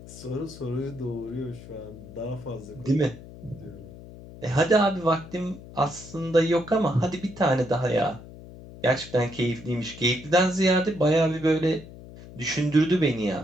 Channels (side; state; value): left; noise; hum, 16 dB below the sound